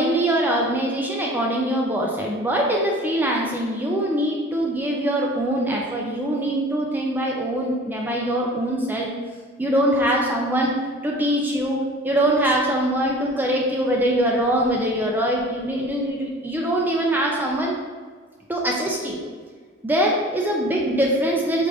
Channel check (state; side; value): normal; both; correlation 0.44